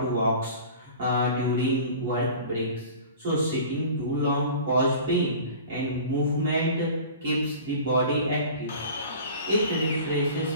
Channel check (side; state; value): both; inverted; correlation -0.40